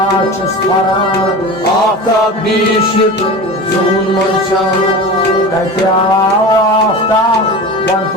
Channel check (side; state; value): both; normal; correlation 0.31